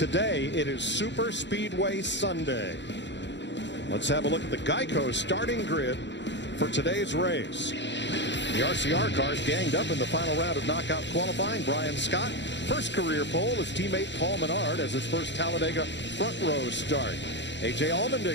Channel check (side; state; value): right; late; 0.52 ms